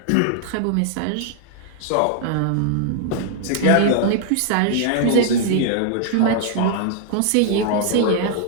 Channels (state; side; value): different; both; correlation -0.01